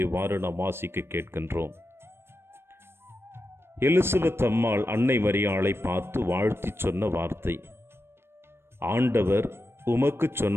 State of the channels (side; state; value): left; late; 0.12 ms